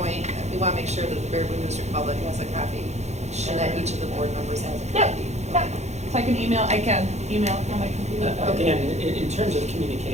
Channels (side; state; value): left; late; 0.33 ms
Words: We want to make sure that the Baraboo District public has a copy, and that each of the board members has a copy. Yep. So I can email it on my computer. Again, in terms of